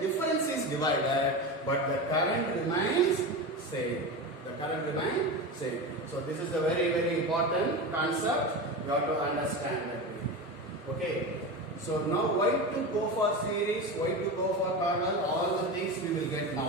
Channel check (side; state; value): both; normal; correlation 0.23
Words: difference is divided, but the current remains same. The current remains same. So this is a very important concept. You have to understand that. Okay. So now why to go for series, why to go for parallel, all the things we will get